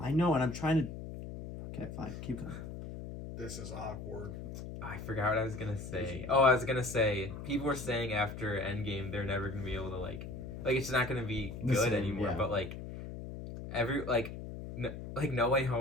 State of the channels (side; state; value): left; noise; hum, 9 dB below the sound